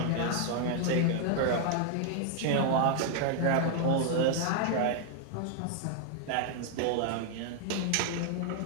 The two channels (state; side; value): different; both; correlation 0.00